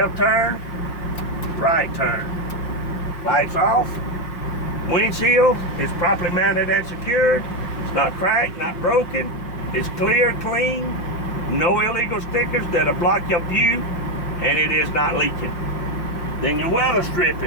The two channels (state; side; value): late; right; 5.7 ms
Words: turn, right turn. Lights off. Windshield is properly mounted and secured. It's not cracked, not broken. It's clear, clean. No illegal stickers that'll block your view, and it is not leaking. Then your weather